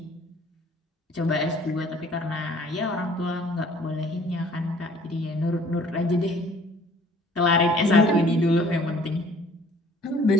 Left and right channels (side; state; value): both; normal; correlation 0.55